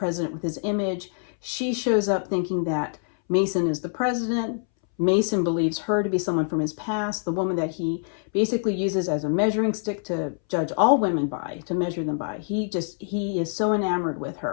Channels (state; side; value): silent; right; 62 dB below the other